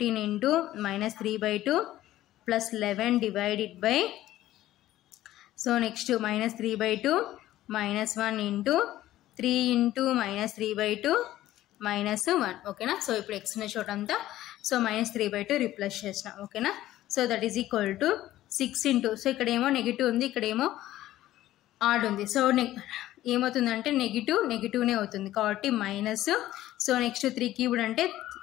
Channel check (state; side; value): quieter; right; 14.5 dB